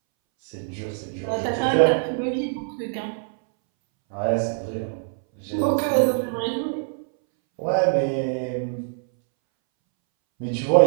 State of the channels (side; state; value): left; silent; 63 dB below the other